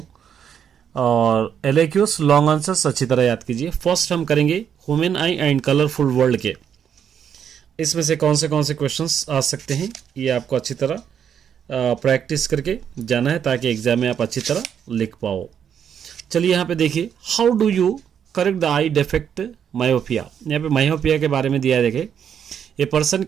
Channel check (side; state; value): left; quieter; 8.3 dB